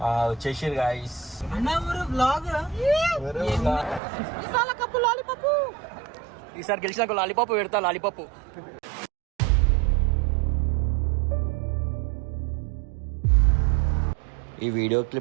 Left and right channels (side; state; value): left; drops out; at 4.0 s